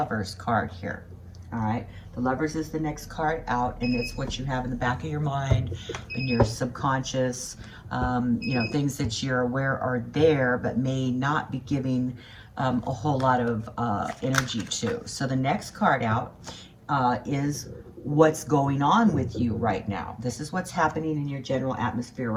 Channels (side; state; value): both; identical; correlation 1.00